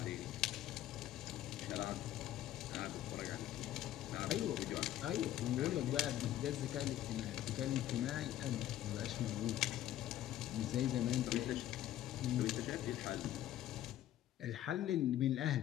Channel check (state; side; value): quieter; right; 12.9 dB